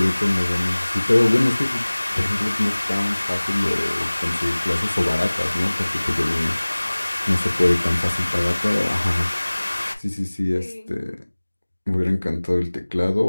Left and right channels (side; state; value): both; inverted; correlation -1.00